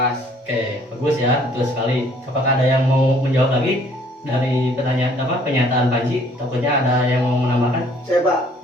Oke, bagus ya, betul sekali. Apakah ada yang mau menjawab lagi dari pertanyaan pernyataan Panji? Takutnya ada yang mau menambahkan? Saya, Pak.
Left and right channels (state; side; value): normal; both; correlation 0.59